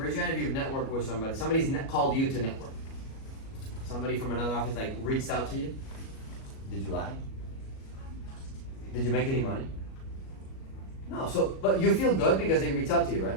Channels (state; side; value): late; right; 37 ms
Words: your hand if you've networked with somebody, somebody's called you to network. Somebody from another office like reached out to you. Did you lie? Did you make any money? No, so, but you feel good because they reach out to you, right?